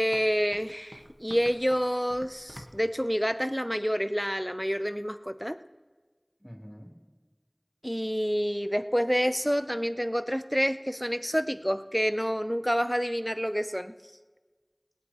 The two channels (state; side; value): identical; both; correlation 1.00